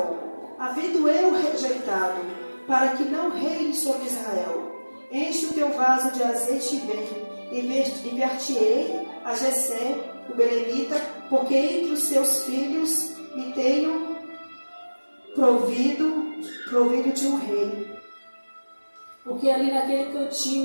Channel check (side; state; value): both; inverted; correlation -1.00